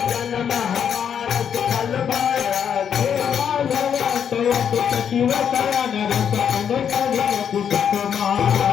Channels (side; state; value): right; quieter; 8.1 dB